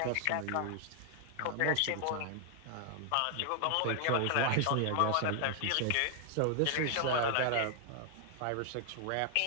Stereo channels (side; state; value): both; different; correlation 0.00